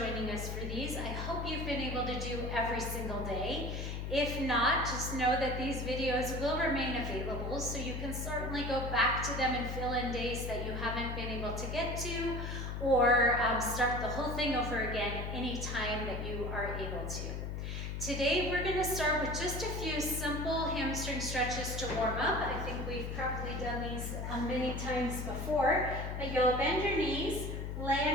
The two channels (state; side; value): noise; left; hum, 4 dB below the sound